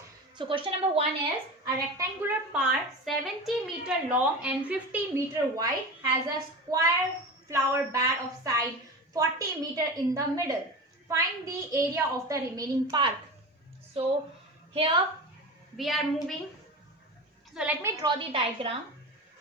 So question number 1 is a rectangular part 70-meter long and 50-meter wide has a square flower bed of side 40-meter in the middle. Find the area of the remaining part. So here we are moving. So let me draw the diagram.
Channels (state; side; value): normal; both; correlation 0.28